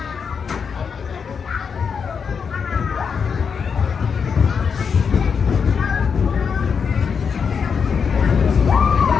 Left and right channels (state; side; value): quieter; right; 6.2 dB